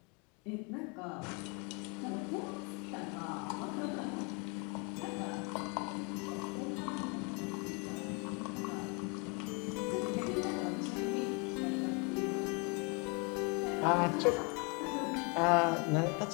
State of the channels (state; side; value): quieter; right; 32.9 dB